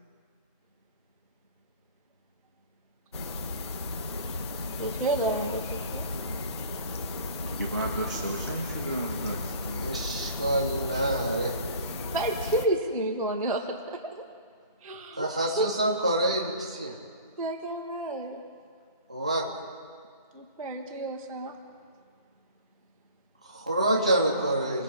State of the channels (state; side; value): inverted; both; correlation -0.45